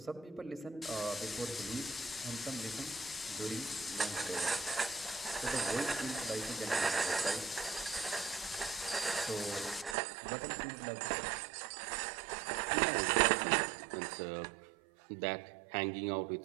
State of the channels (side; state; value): left; drops out; at 10.0 s